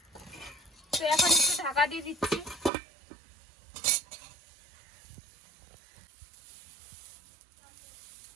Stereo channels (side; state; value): left; drops out; at 2.7 s